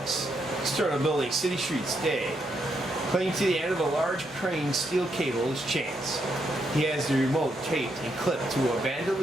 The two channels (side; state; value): both; normal; correlation 0.79